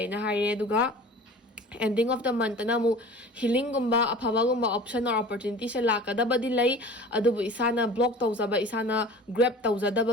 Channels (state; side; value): normal; both; correlation 0.41